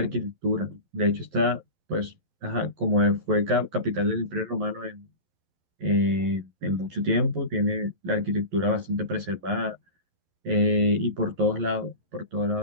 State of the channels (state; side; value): late; left; 11 ms